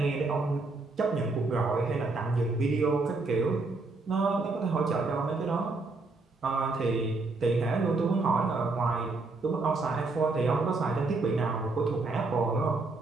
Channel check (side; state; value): left; quieter; 3.5 dB